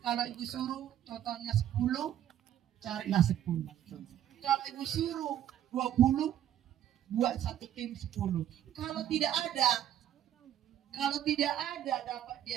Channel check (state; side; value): quieter; left; 11.0 dB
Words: kalau Ibu suruh totalnya 10, carilah 10. Kalau Ibu suruh 20, buat satu tim 10. Kalau tidak ada dapat